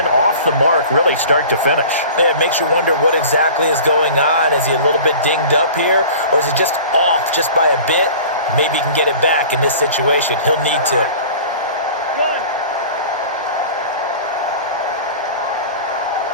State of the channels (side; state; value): both; inverted; correlation -0.40